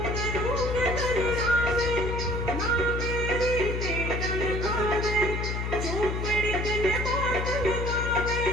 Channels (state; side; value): noise; left; hum, 2 dB below the sound